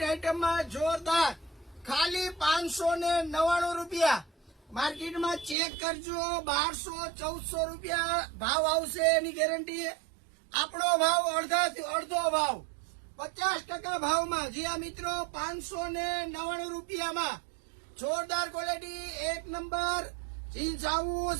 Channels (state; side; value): drops out; left; at 5.6 s